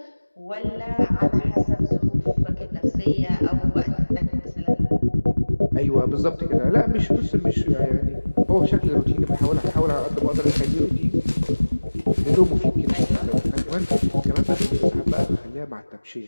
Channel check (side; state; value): both; inverted; correlation -1.00